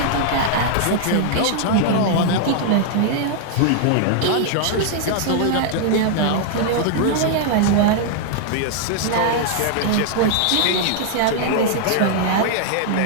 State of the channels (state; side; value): different; both; correlation -0.01